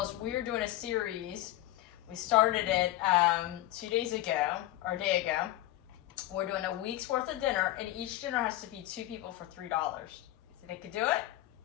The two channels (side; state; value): right; quieter; 15.7 dB